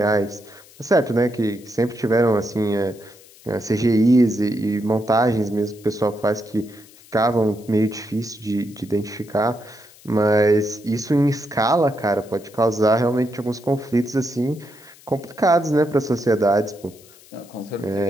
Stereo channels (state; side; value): noise; left; hiss, 24 dB below the sound